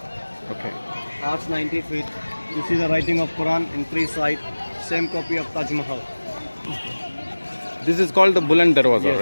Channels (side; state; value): both; inverted; correlation -1.00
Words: Okay. Arch 90 feet. You see the writing of Quran in three sides. Same copy of Taj Mahal. This is called the Buland Darwaza, Yes,